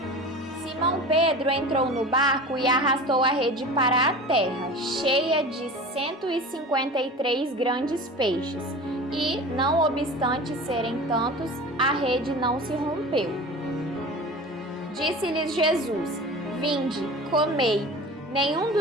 Simão Pedro entrou no barco e arrastou a rede para a terra, cheia de 153 grandes peixes, e, não obstante serem tantos, a rede não se rompeu. Disse-lhes Jesus: Vinde, comei. Nenhum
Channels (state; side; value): normal; both; correlation 0.35